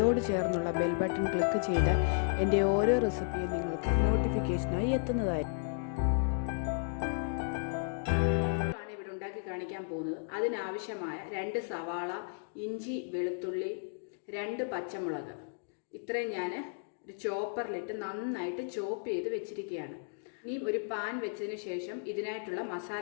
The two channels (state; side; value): silent; right; digital silence